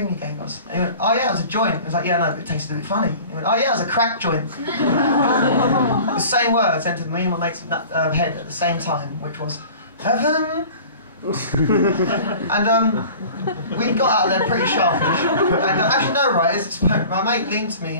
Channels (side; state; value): both; inverted; correlation -0.43